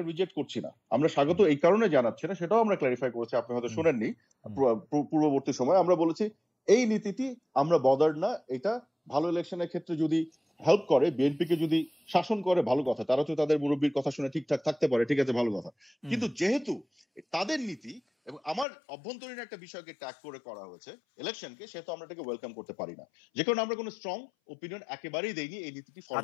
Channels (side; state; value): right; drops out; at 18.7 s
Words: রিজেক্ট করছি না, আমরা স্বাগত এই কারণে জানাচ্ছি না, সেটাও আমরা ক্লারিফাই করেছি, আপনি হয়তো শুনেননি পূর্ববর্তী সময়। আমরা বলেছি এই নীতিটি আমরা বদার্ড না, এটা ভালো ইলেকশনের ক্ষেত্রে যদি হেল্প করে, বিএনপিকে যদি শাসন করে ভালো কথা, তারা তো তাদের মুরব্বীর কথা শুনে ঠিকঠাক থাকতে পারে, ঠিক আছে ভালো কথা। কিন্তু যেহেতু তাদের নীতি এবং আমার অভ্যন্তরীণ একটা বিষয়কে ট্যাগ করে করা হয়েছে ইলেকশনকে, সেহেতু আমরা এটাকে ওয়েলকাম করতে পারি না। যে কারণে আমরা কোনো স্ট্রং ওপিনিয়ন একেবারেই দেইনি এই নীতিটি